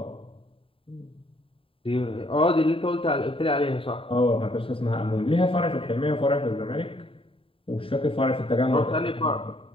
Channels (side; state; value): right; late; 0.26 ms